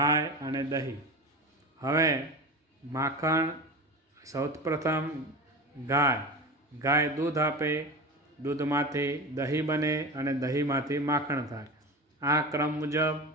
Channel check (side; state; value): both; normal; correlation 0.28